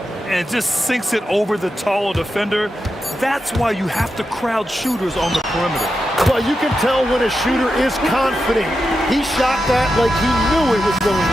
And just sinks it over the taller defender. That's why you have to crowd shooters on the perimeter. Well, you can tell when a shooter is confident. He shot that like he knew it was going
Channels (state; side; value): normal; both; correlation 0.89